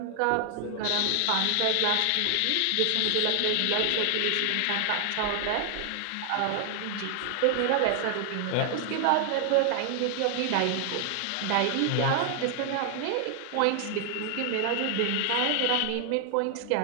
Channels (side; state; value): both; different; correlation 0.00